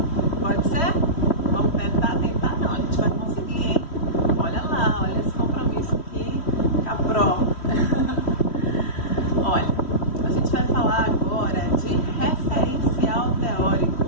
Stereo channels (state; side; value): late; right; 3.1 ms